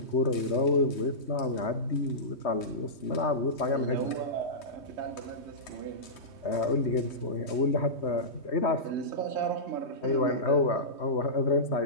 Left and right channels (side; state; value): right; late; 3.2 ms